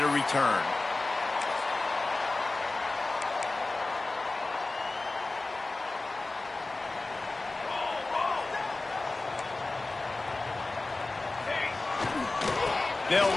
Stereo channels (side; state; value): right; quieter; 3.2 dB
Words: a return. They'll